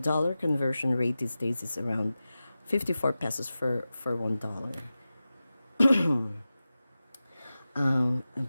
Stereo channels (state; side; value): inverted; both; correlation -0.95